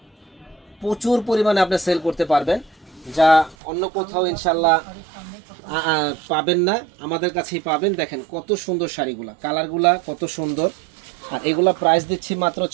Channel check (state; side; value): drops out; left; at 3.6 s